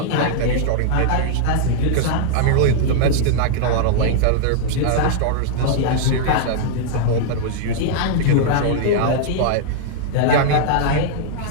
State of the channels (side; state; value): both; different; correlation -0.01